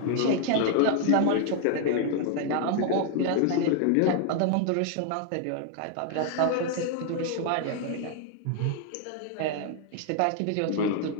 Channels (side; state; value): both; different; correlation 0.00